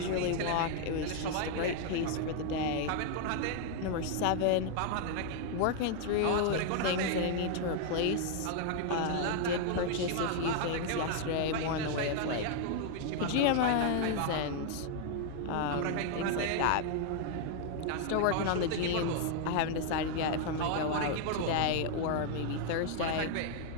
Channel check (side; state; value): both; different; correlation 0.00